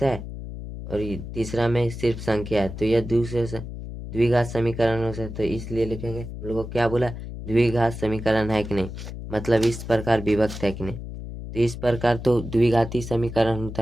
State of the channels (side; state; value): left; noise; hum, 9 dB below the sound